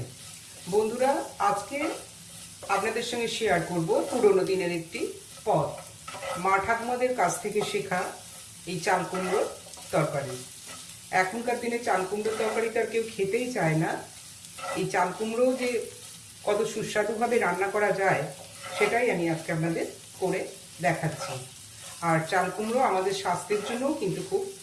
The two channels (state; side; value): identical; both; correlation 1.00